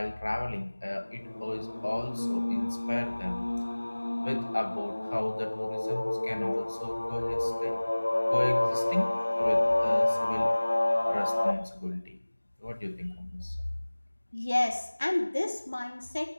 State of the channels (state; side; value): inverted; both; correlation -1.00